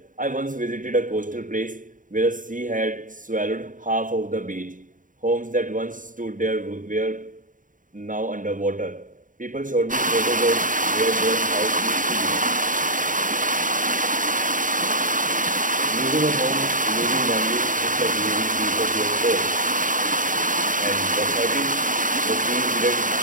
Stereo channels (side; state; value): left; late; 0.38 ms